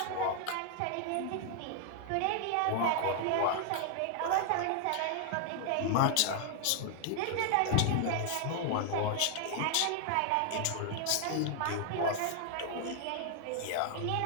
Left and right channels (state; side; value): different; both; correlation 0.00